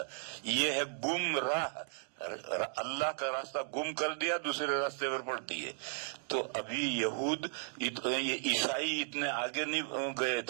یہ ہے گمراہ. اللہ کا راستہ گم کر دیا، دوسرے راستے پر پڑتی ہے. تو ابھی یہود عیسائی اتنے آگے نہیں گئے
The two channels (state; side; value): silent; left; digital silence